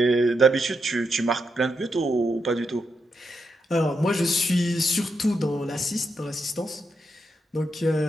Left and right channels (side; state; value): both; normal; correlation 0.83